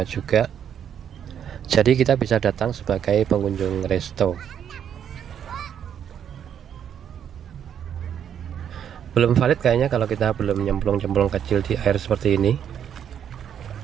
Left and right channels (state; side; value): quieter; left; 8.9 dB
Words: juga. Jadi kita bisa datang sebagai pengunjung resto. Belum valid kayaknya kalau kita belum nyemplung-nyemplung kecil di air seperti ini,